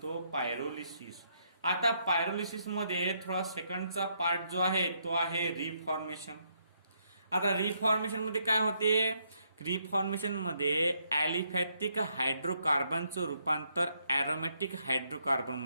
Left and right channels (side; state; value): both; inverted; correlation -0.75